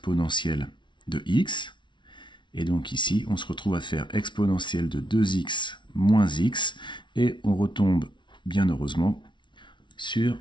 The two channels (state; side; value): late; right; 0.23 ms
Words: de x. Et donc ici, on se retrouve à faire exponentielle de 2x moins x, et on retombe, bien heureusement, sur